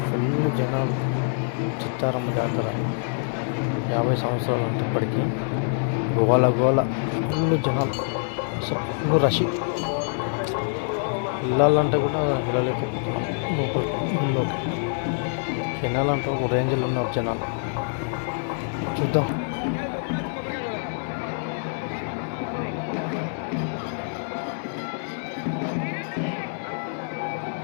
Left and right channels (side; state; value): right; silent; 61 dB below the other